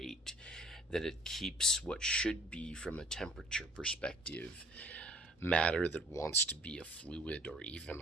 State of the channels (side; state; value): both; normal; correlation 0.56